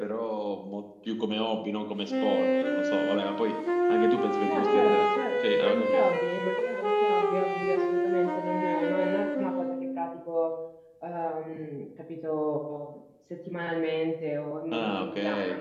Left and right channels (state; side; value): identical; both; correlation 1.00